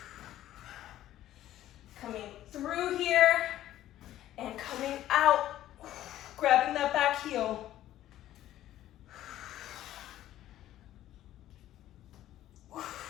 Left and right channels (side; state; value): right; quieter; 13.3 dB